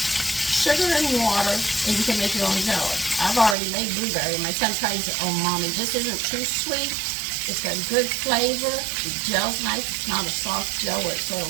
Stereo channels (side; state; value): left; drops out; at 3.6 s